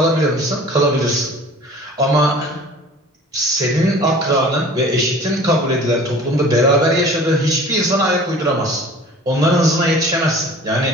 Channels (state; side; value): normal; both; correlation 0.45